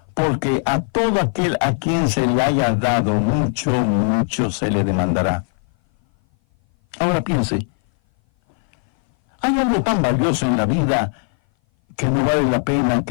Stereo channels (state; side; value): silent; right; 58 dB below the other